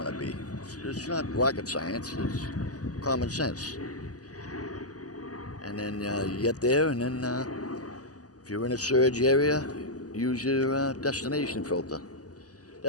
to be. It's not rocket science, it's common sense. And then you get there, and then if you're in a surge area, use your destination filter.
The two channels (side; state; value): right; late; 0.67 ms